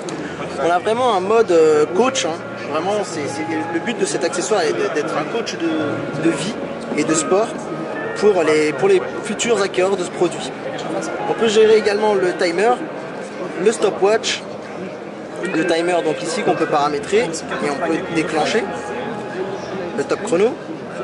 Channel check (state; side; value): identical; both; correlation 1.00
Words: On a vraiment un mode coach, hein. Vraiment le but de cet accessoire est d'être un coach de vie et de sport pour les futurs acquéreurs de ce produit. On peut gérer également le timer, le stopwatch, le timer donc ici qu'on peut paramétrer et on peut déclencher, le top chrono,